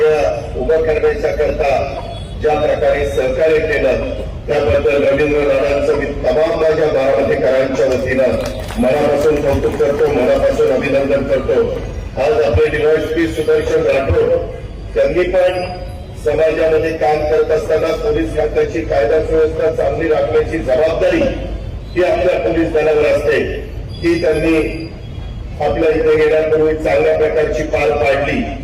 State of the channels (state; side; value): identical; both; correlation 1.00